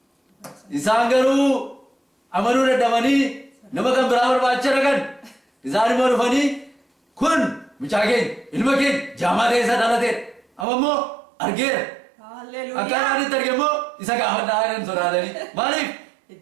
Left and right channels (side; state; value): left; drops out; at 10.7 s